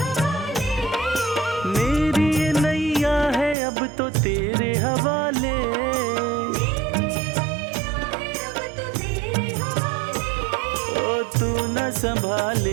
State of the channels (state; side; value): drops out; left; at 3.6 s